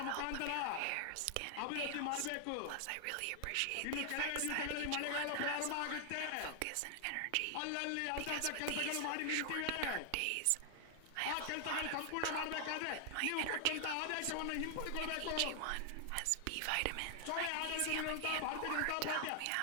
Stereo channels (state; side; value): different; both; correlation 0.00